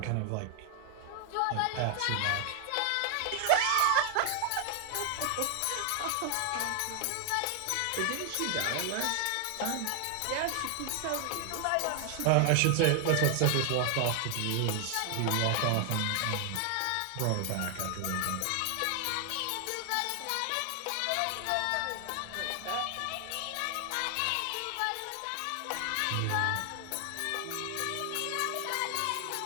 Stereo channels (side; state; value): both; different; correlation 0.00